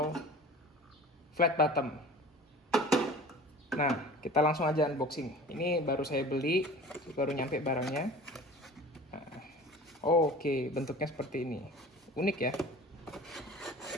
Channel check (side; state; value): both; normal; correlation 0.41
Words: flat bottom. Nah, kita langsung aja unboxing. Ini baru saya beli, baru nyampe barangnya. Nah, oke, bentuknya seperti ini. Unik ya.